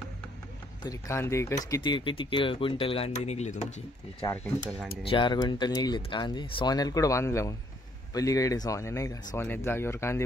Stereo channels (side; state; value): both; normal; correlation 0.67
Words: तरी कांदे किती किती क्विंटल कांदे निघले तुमचे? 4 क्विंटल कांदे. 4 क्विंटल निघलेत कांदे. सोन्याला कुठं बांधलं मग? पलीकडे सोन्या नाही का, सोन्यात जागेवर कांदे